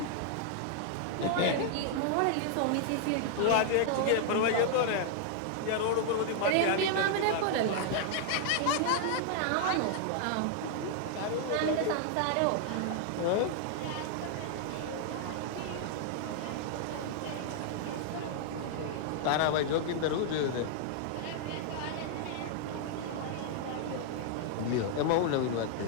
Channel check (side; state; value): both; different; correlation -0.01